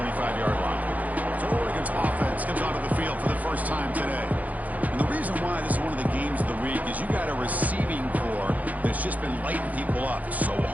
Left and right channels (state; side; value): late; left; 0.078 ms